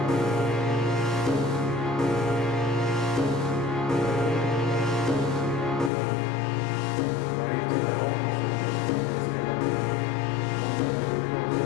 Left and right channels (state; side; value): drops out; right; at 5.9 s